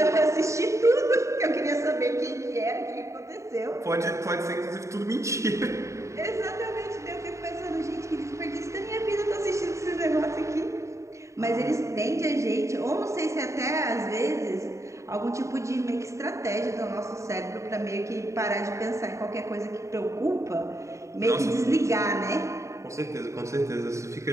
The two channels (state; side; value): late; left; 0.14 ms